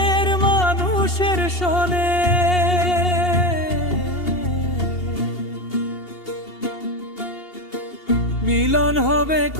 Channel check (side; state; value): right; late; 2.8 ms